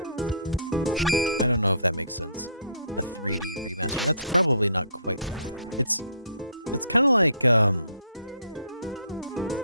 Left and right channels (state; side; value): inverted; both; correlation -0.58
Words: I don't know if that makes sense. A 3D remaster. That's probably not quite. It's kind of like it's